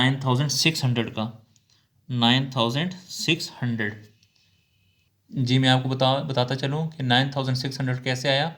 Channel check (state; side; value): identical; both; correlation 1.00